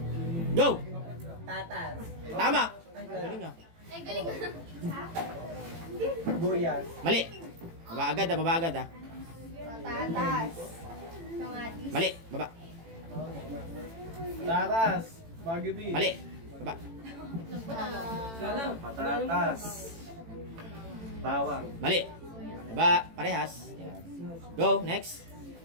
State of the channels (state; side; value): late; left; 18 ms